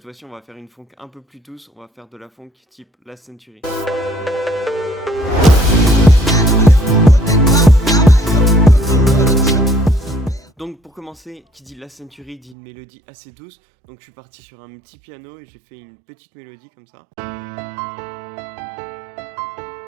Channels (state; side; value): drops out; left; at 12.6 s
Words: fois-ci, on va faire une funk un peu plus douce. On va faire de la funk type Last Century. Donc pour commencer, qui dit Last Century dit une mélodie assez douce. Donc je suis parti sur un petit piano et j'ai fait une petite mélodie comme ça.